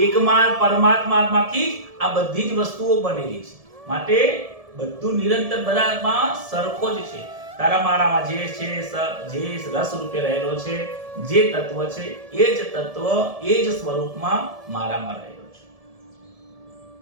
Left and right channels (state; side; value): late; left; 1.7 ms